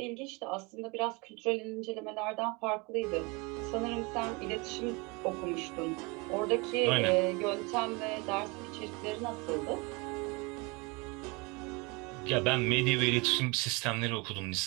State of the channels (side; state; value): left; quieter; 27.6 dB